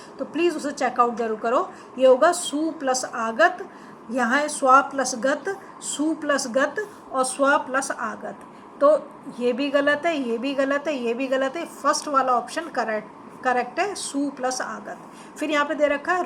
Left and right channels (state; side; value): identical; both; correlation 1.00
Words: तो प्लीज़ उसे चेकआउट जरूर करो। ये होगा सु प्लस आगत, यहाँ है स्वा प्लस गत, सु प्लस गत और स्वा प्लस आगत, तो ये भी गलत है, ये भी गलत है, ये भी गलत है। फर्स्ट वाला ऑप्शन करेक्ट है, सु प्लस आगत। फिर यहाँ पे दे रखा